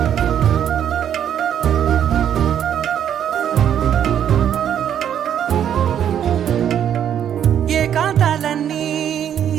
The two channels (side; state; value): left; quieter; 9.5 dB